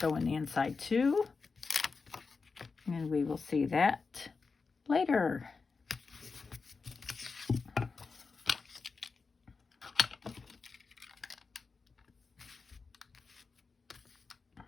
in the inside too. And we will see that later.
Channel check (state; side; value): quieter; right; 4.6 dB